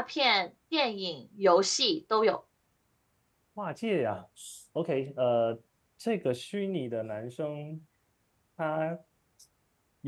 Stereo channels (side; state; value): both; identical; correlation 1.00